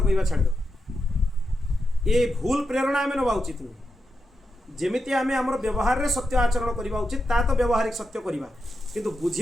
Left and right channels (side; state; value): both; normal; correlation 0.87